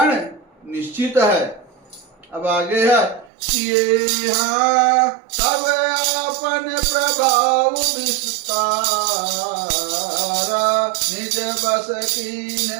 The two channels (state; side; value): drops out; left; at 3.3 s